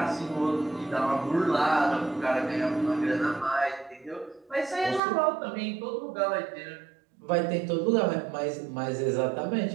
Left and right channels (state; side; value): drops out; left; at 5.0 s